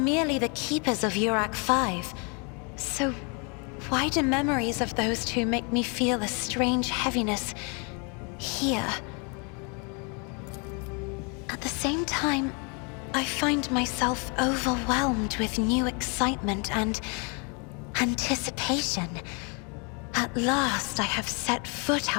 the keepers of Urak 5. So why do memories of those two make me feel a strange heaviness here? At the same time, I find myself overwhelmed with new excitement and anticipation. At last, I have set foot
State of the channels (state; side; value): quieter; right; 34.8 dB